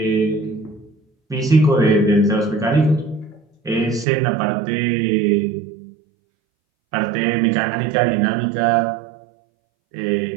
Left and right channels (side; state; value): left; drops out; at 4.0 s